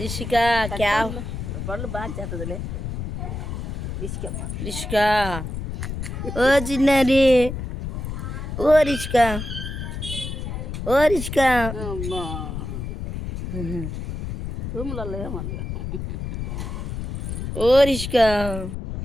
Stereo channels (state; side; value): noise; left; rumble, 5 dB below the sound